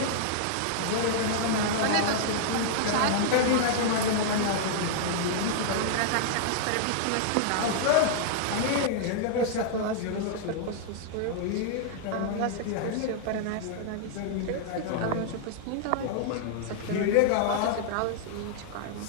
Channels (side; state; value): both; different; correlation -0.01